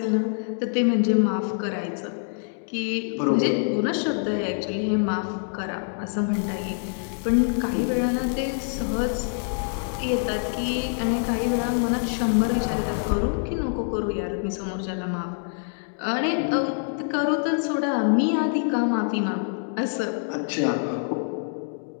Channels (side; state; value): right; silent; digital silence